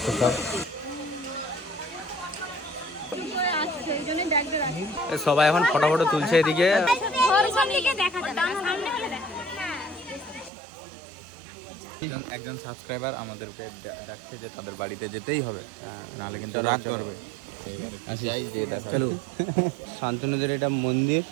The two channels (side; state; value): left; drops out; at 10.5 s